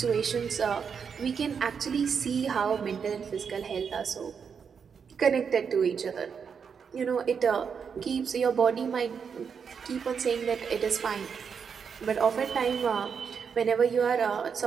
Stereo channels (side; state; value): left; quieter; 6.5 dB